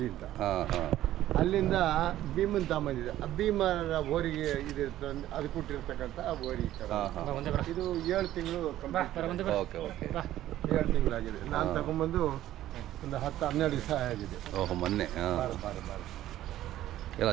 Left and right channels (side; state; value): left; quieter; 13.6 dB